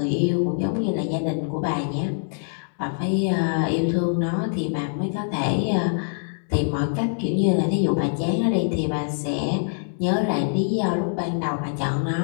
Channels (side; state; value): right; silent; digital silence